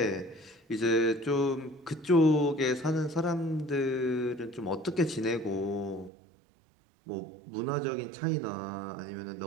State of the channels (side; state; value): left; drops out; at 6.1 s